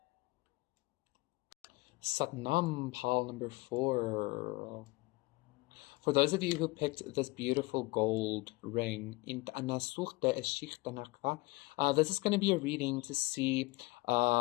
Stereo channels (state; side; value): quieter; right; 23.2 dB